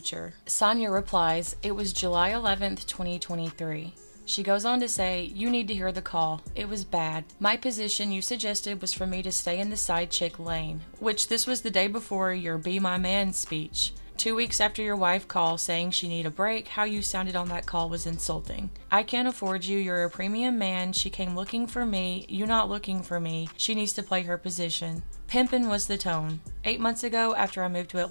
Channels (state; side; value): inverted; both; correlation -1.00